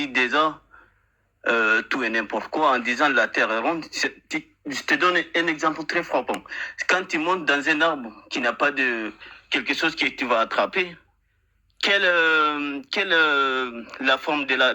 déjà tout et n'importe quoi en disant la terre est ronde. Je te donne un exemple très frappant. Quand tu montes dans un arbre qui n'a pas de quelque chose que tu vas attraper, quelle la forme de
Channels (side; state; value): both; identical; correlation 1.00